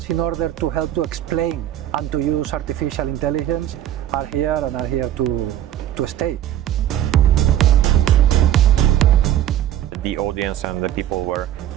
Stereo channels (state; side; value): quieter; left; 11.8 dB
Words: in order to help to explain and to use artificial intelligence are here and are here to stay. The audience and the people were